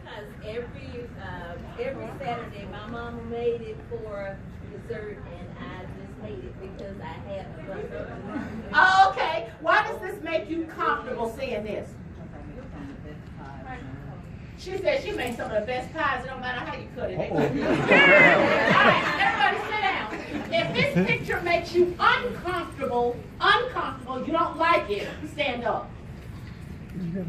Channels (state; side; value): identical; both; correlation 1.00